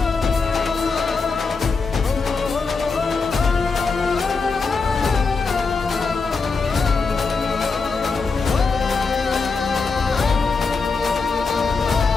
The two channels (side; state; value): right; quieter; 4.5 dB